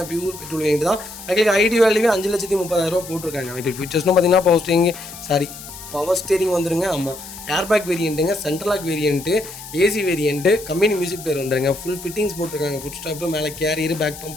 பியூர் பெட்ரோல் வேண்டி தான். பைக்கிலுக்கு ஐடி வேல்யூவே 5,30,000 போட்டிருக்காங்க. பைக்கில் ஃபீச்சர்ஸ்னு பார்த்தீங்கன்னா பவர் ஸ்டீரிங் வந்துருங்க. ஆமாம், ஏர்பேக் வேரியண்ட்டுங்க, central lock variant, AC variant, company music player வந்துருங்க. ஃபுல் ஃபிட்டிங்ஸ் போட்டிருக்காங்க. ஃபுட் ஸ்டாப்பு, மேலே கேரியர், பேக்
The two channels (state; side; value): noise; left; hiss, 14 dB below the sound